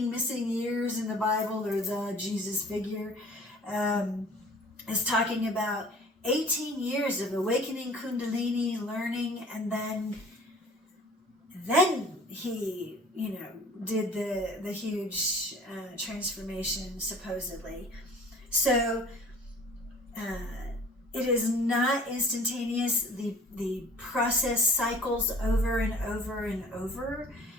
missing years in the Bible, or the Jesus figure, is talking about 18 years of awakening Kundalini, learning, and then he, did the huge transformation, supposedly. So it is not instantaneous. The process cycles over and over and over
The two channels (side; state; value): both; normal; correlation 0.48